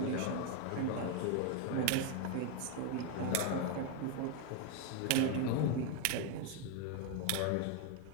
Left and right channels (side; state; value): both; different; correlation 0.01